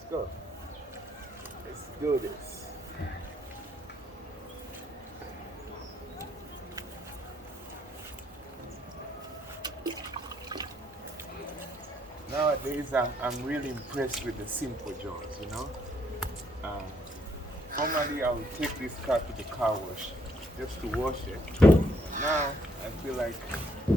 go. Let's do this. Nowadays, I'm really impressed with the simple jobs, you know. Um, Normally, I would take this car to the car wash just to wash it. Now, I feel like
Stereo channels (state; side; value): normal; both; correlation 0.70